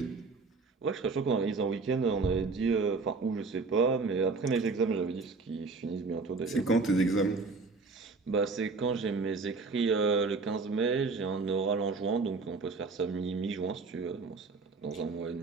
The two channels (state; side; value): quieter; left; 4.2 dB